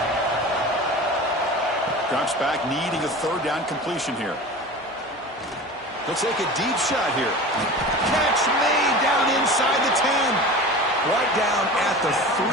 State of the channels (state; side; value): normal; both; correlation 0.34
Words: Drops back, needing a third down completion here. He'll take a deep shot here. Catch made down inside the 10. Right down at the 3,